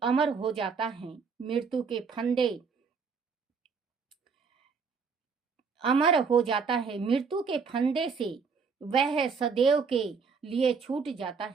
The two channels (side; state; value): left; quieter; 5.5 dB